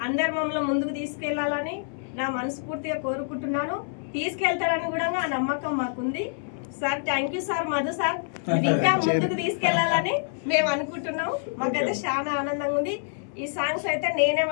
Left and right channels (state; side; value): silent; right; 61 dB below the other